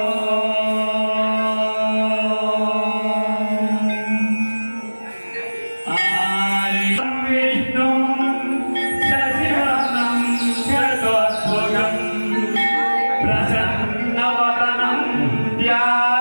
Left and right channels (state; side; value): inverted; both; correlation -1.00